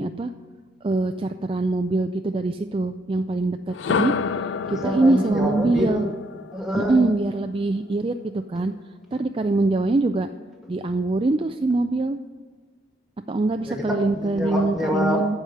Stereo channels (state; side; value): normal; both; correlation 0.73